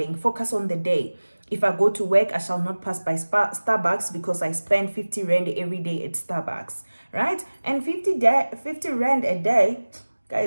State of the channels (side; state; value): both; inverted; correlation -1.00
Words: focus on the day. If I go to work, I shall not pass by Starbucks because I spend 50 Rand every day at Starbucks, right? And 50 Rand a day,